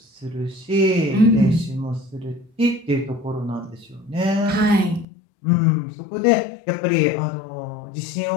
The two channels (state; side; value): drops out; right; at 5.1 s